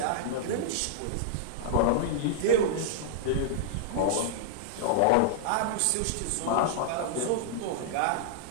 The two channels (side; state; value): both; different; correlation -0.02